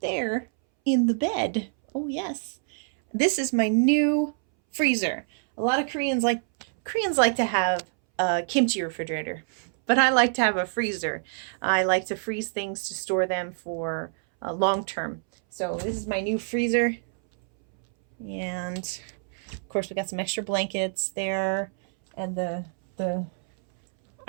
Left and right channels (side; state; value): left; silent; 61 dB below the other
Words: there in the bed. Oh yes. This is my new freezer. A lot of Koreans like to have a kimchi refrigerator, but I like to have a freezer. I like to freeze things to store them for long term. So this is my new freezer. And of course we got some extra blankets there, and the